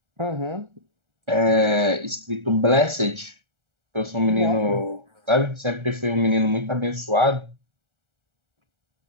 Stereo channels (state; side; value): late; left; 1.4 ms